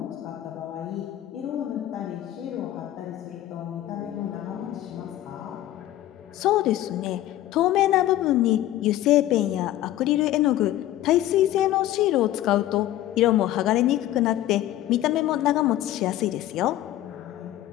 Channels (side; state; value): right; quieter; 13.9 dB